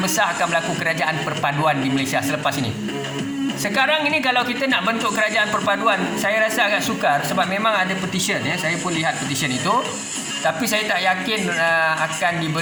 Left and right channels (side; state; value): both; identical; correlation 1.00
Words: akan berlaku kerajaan perpaduan di Malaysia selepas ini. Sekarang ini kalau kita nak bentuk kerajaan perpaduan, saya rasa agak sukar sebab memang ada petition, ya. Saya pun lihat petition itu. Tapi saya tak yakin akan